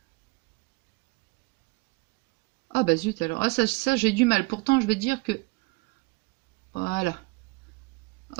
Ah bah zut alors. Ah ça j'ai du mal. Pourtant je vais dire que... Voilà.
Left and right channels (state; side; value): quieter; left; 26.9 dB